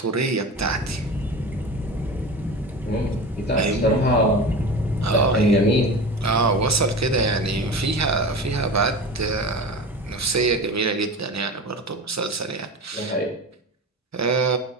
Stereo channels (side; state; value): both; normal; correlation 0.31